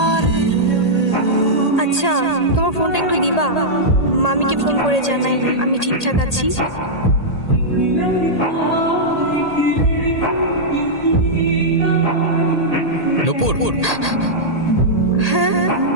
আচ্ছা তোমার ফোনটা একটু দিবা, মামিকে ফোন করে জানাই আমি ঠিকঠাক আছি। নূপুর,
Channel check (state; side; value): late; right; 1.8 ms